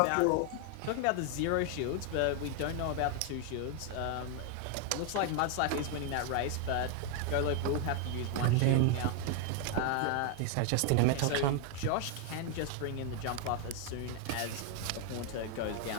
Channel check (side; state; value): both; different; correlation 0.00